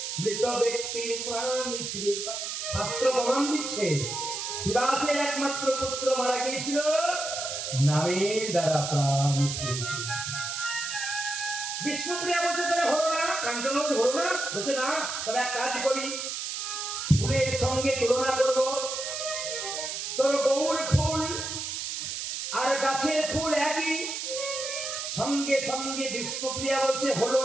মৃত ব্যক্তির প্রাণ ফিরে পায়। শাস্ত্র প্রমাণ দিচ্ছে শিবাসের একমাত্র পুত্র মারা গিয়েছিল, নামের দ্বারা প্রাণ ফিরে। বিষ্ণুপ্রিয়া বলছে তাহলে হলো না, কাঞ্চন বলছে হলো না। বলছে না, তাহলে এক কাজ করি, ফুলের সঙ্গে তুলনা করবো। তোর গৌর ফুল আর গাছের ফুল একই, সঙ্গে সঙ্গে বিষ্ণুপ্রিয়া বলছে হলো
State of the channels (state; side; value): noise; right; hiss, 4 dB below the sound